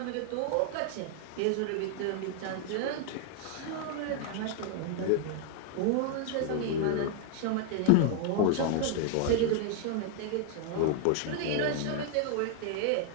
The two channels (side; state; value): both; different; correlation 0.00